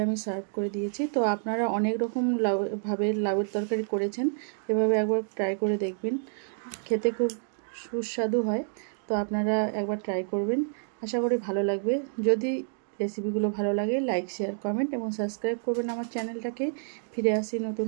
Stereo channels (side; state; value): left; silent; digital silence